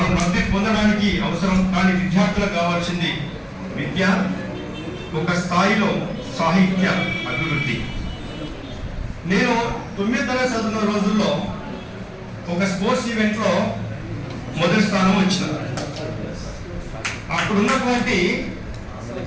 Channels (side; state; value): both; identical; correlation 1.00